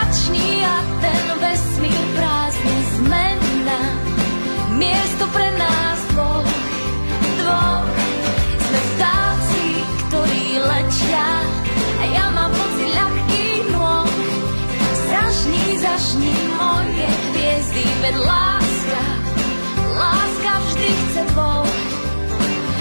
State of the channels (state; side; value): inverted; both; correlation -1.00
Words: a ten vesmír prázdny zmena. Miesto pre nás dvoch, dvoch. Sme vtáci, ktorí letia, a ja mám pocit ľahkých nôh. Zažni, zažni moje hviezdy, veď láska, láska vždy chce dvoch,